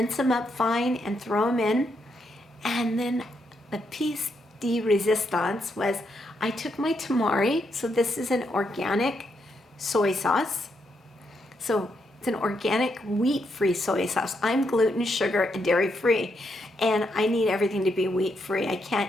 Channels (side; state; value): both; normal; correlation 0.79